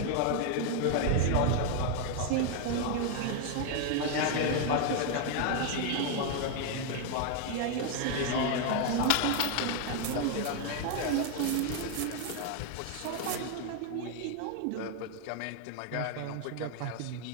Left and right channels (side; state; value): both; different; correlation 0.00